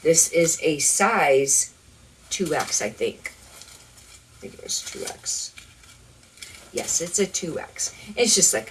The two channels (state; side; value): identical; both; correlation 1.00